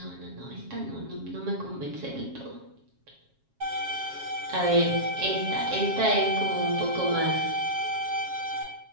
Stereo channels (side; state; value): left; late; 7.3 ms